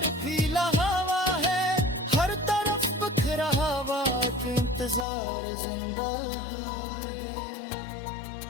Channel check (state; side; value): drops out; right; at 5.1 s